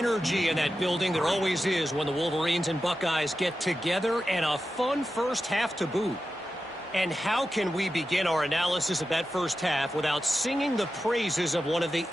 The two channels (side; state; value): both; normal; correlation 0.91